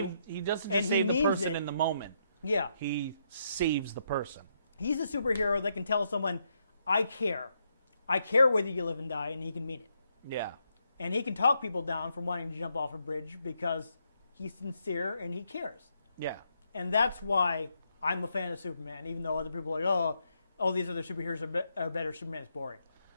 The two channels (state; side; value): inverted; both; correlation -0.78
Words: He doesn't and just he save the means person it. in the moment. Yeah. He saves the person. He's a superhero that can tell someone, I care. I care whether you live and die, and he can mean it. Yeah. And he can talk people down from wanting to jump off a bridge because he's sincere and he cares. Yeah. And that's why I'm a fan of Superman, even though other people are like, oh, all these other superheroes are better. Superman's boring.